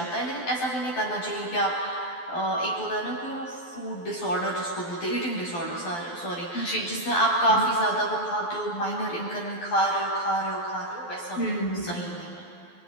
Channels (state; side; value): late; right; 12 ms